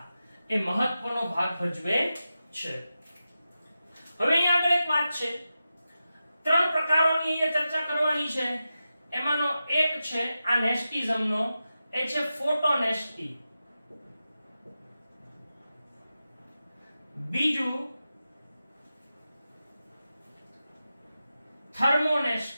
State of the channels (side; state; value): both; inverted; correlation -0.91